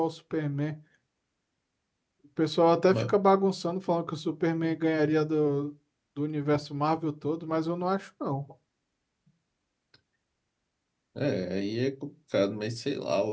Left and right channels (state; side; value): identical; both; correlation 1.00